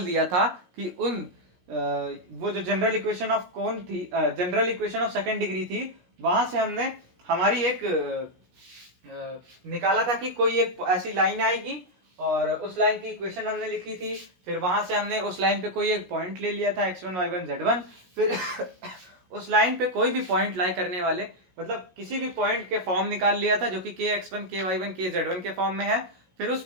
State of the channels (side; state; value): left; late; 16 ms